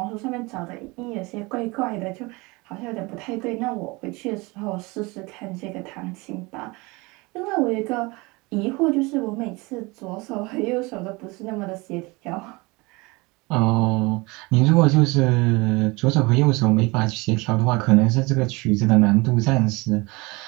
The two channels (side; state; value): left; quieter; 24.9 dB